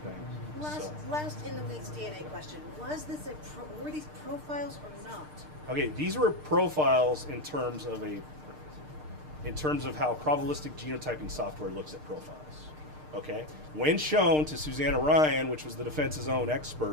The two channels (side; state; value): left; late; 6.6 ms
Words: Last in the weeds DNA question. Was this were these profiles or not? Okay, these were profiles in terms of how probabilistic genotyping software looks at profiles. Okay, when shown to Susanna Ryan, which was the defense's own